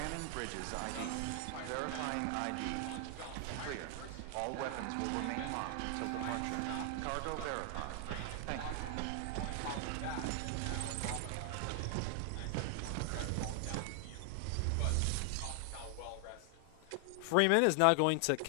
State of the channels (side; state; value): both; different; correlation 0.00